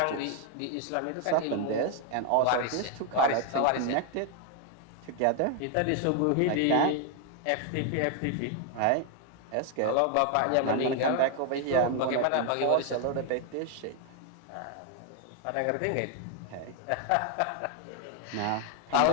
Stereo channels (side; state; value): both; different; correlation 0.00